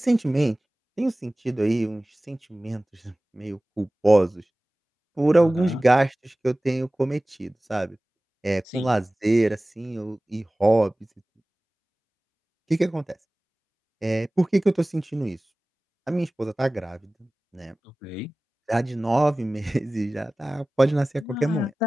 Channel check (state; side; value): normal; both; correlation 0.98